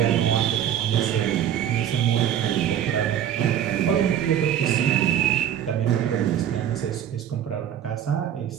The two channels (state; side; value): quieter; left; 10.1 dB